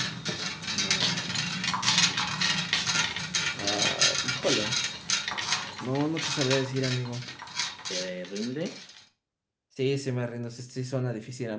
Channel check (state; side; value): identical; both; correlation 1.00